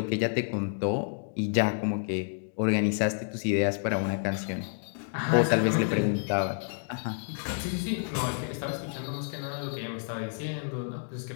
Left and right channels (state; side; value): silent; right; digital silence